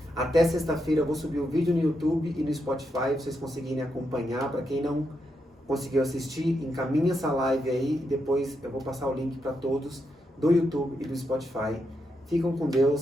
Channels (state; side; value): normal; both; correlation 0.83